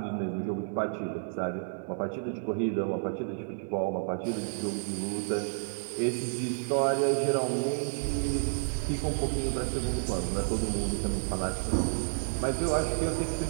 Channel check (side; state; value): left; silent; 57 dB below the other